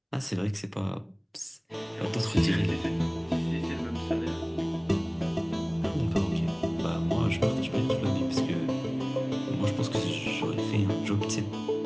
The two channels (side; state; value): both; identical; correlation 1.00